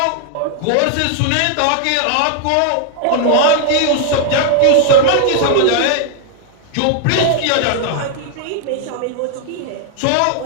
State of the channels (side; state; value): both; different; correlation 0.00